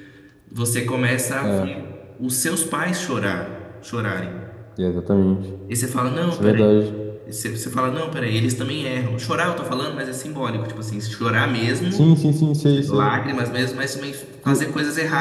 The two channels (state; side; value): identical; both; correlation 1.00